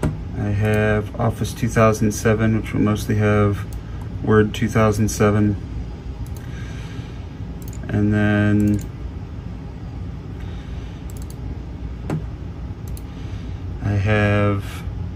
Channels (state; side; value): identical; both; correlation 1.00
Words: I have Office 2007, which will mostly have Word 2007. And then I have